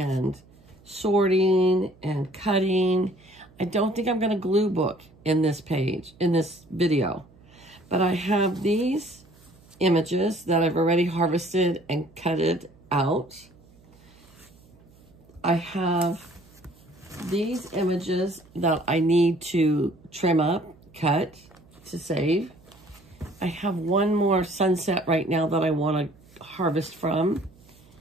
sorting and cutting. I don't think I'm going to glue book in this page, in this video. But I have these images that I've already harvested and cutted out. I have these images that I need to trim up, cut to save. I have one more sunset right now that I want to harvest from.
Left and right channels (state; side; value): noise; right; hum, 27 dB below the sound